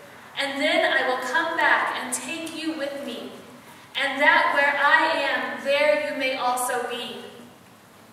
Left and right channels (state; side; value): identical; both; correlation 1.00